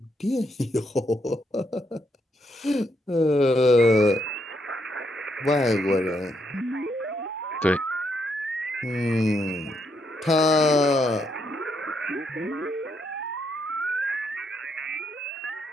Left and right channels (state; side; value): normal; both; correlation 0.77